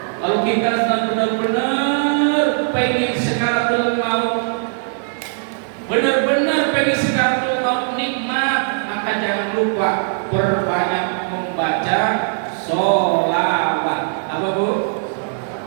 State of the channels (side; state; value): left; silent; digital silence